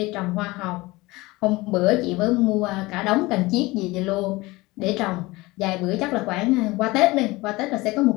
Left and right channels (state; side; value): quieter; right; 21.4 dB